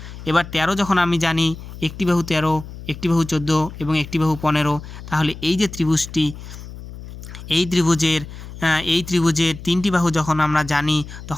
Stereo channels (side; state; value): left; noise; hum, 13 dB below the sound